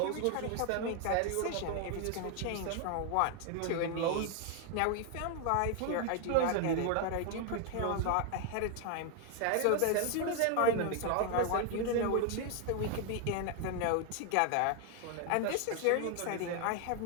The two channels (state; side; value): different; both; correlation 0.01